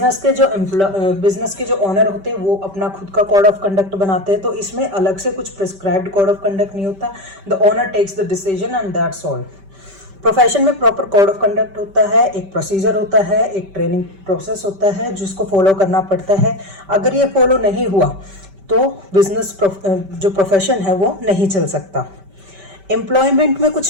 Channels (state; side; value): late; left; 5.2 ms